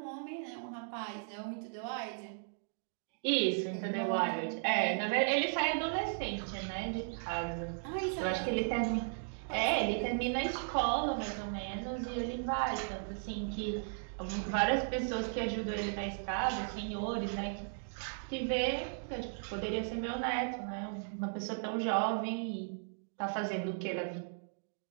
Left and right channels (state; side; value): silent; left; digital silence